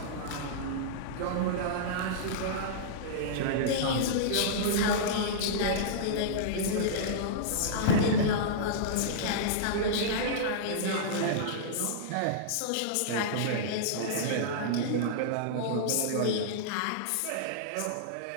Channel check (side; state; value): both; different; correlation -0.03